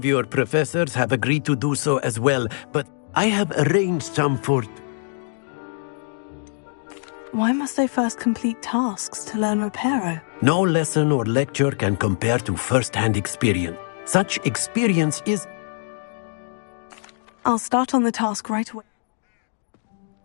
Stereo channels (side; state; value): right; silent; digital silence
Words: your professors have agreed to do so as well, but I have arranged some for... Why must I first complete tasks to learn Reparo? No lesson or lecture can compare to first-hand experience. Such experience is... I'll start on the task right away.